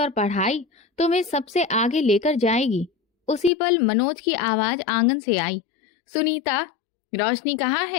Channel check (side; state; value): right; drops out; at 3.5 s